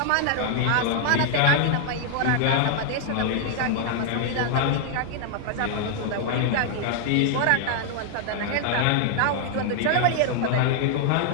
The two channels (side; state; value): both; different; correlation 0.00